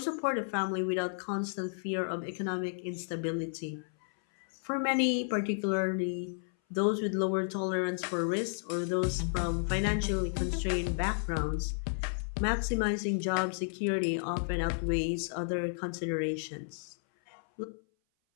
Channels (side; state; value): right; silent; 56 dB below the other